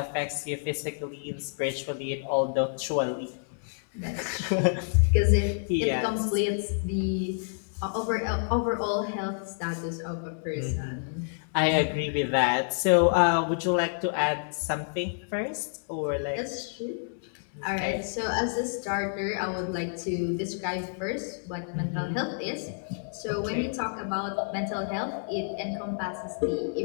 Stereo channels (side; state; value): right; silent; digital silence